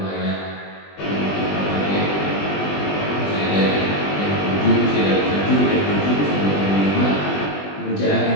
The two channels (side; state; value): right; late; 20 ms